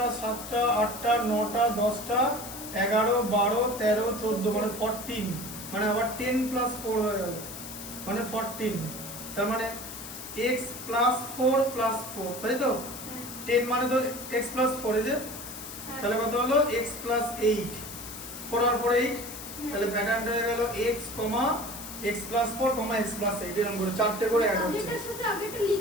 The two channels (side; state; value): left; noise; hiss, 11 dB below the sound